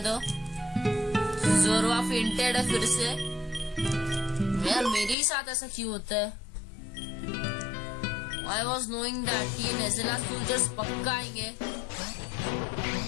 जोरवा फेंटेड है फिर से। यार मेरे ही साथ ऐसा क्यों होता है? I was knowing that ये नेज़ेला सोल्जर्स पक्का आएंगे।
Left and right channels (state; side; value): drops out; right; at 5.2 s